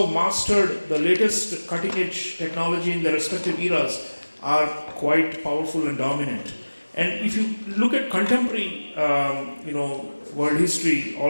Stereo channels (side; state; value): both; inverted; correlation -1.00